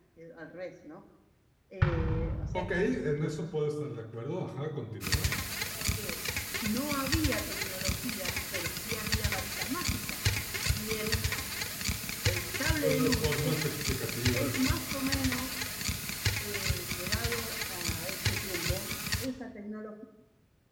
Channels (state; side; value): identical; both; correlation 1.00